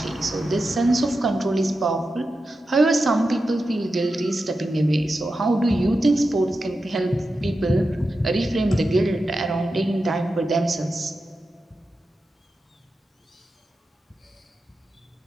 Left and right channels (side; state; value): both; normal; correlation 0.91